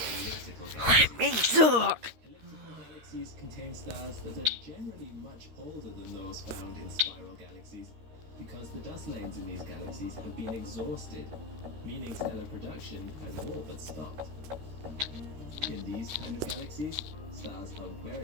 elliptical galaxies. Let me talk! Elliptical galaxies contain stars that are generally much older than those found in spiral galaxies, because the dust lanes in these galaxies have been exhausted, meaning stellar production has all but stopped. In these kind of galaxies, stars are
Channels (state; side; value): late; left; 13 ms